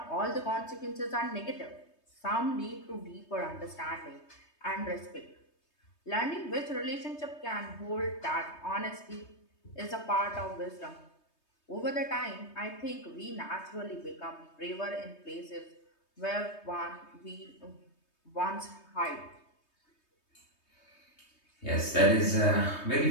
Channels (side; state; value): right; late; 3.2 ms